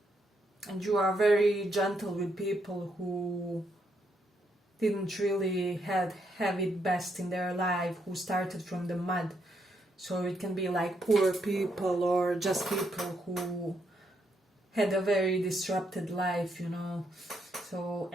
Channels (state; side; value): normal; both; correlation 0.77